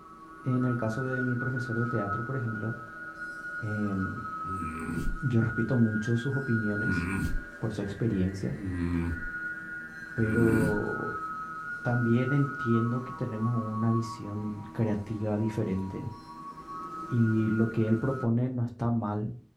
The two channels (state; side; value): identical; both; correlation 1.00